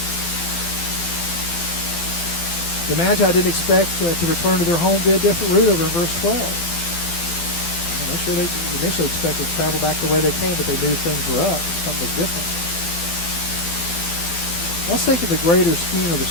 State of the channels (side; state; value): right; late; 12 ms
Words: The Magi didn't expect to return to their home via a different route over in verse 12. I'm sure they initially expected to travel back the way they came, but they knew things were up. Something was different. Let's think of the greater scheme of the